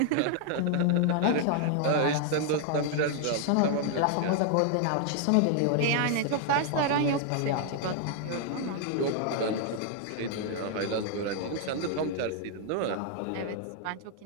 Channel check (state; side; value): different; both; correlation 0.00